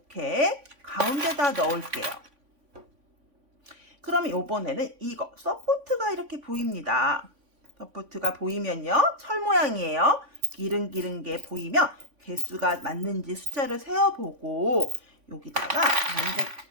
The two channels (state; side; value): late; left; 3.5 ms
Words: 가운데다 넣을게요. 그러면 이번에는 이거 서포트가 이렇게 보입니다. 서포트가 보이면요, 철 모양이에요. 기른기른 게 보이면 개수가 맞는지 숫자를 세어보고 여기다가